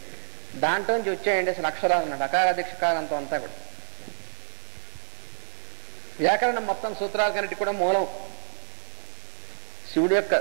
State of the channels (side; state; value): left; silent; digital silence